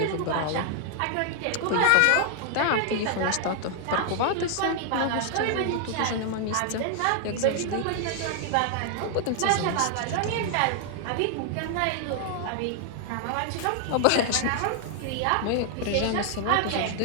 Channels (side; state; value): both; different; correlation 0.00